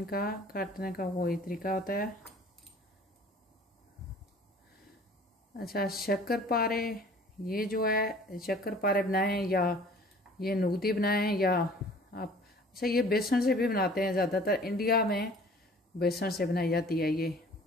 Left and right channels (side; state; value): both; normal; correlation 0.50